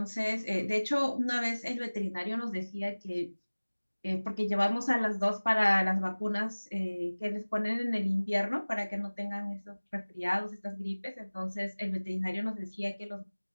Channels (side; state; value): both; inverted; correlation -1.00